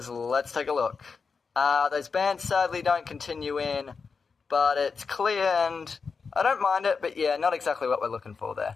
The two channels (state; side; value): quieter; right; 5.1 dB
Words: Let's take a look. Those bands sadly don't continue in, but it's clear and I don't mind it, but yeah, not exactly what we're looking for there.